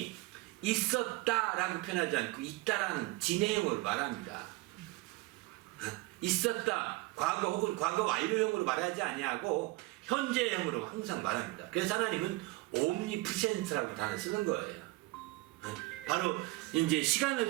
있었다라고 표현하지 않고 있다라는 진행형으로 말합니다. 있었다 과거 혹은 과거 완료형으로 말하지 아니하고 현재형으로 항상 말합니다. 그래서 하나님은 omnipresent라고 단어 쓰는 거예요. 바로 이제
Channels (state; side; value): quieter; left; 21.6 dB